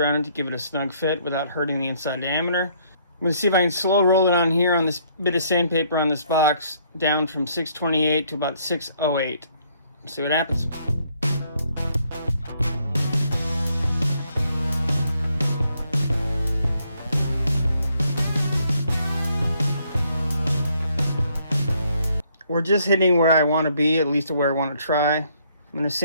it to give it a snug fit without hurting the inside diameter. I'm going to see if I can slow roll it on here on this bit of sandpaper on this box down from 628 to about 608. See what happens. We're just hitting where I want to be, at least where I want to try. I'm going to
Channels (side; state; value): both; inverted; correlation -0.68